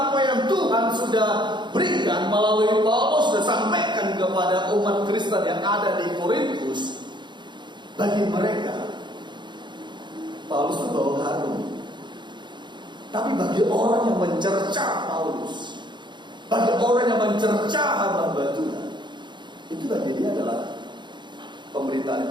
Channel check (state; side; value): late; left; 0.22 ms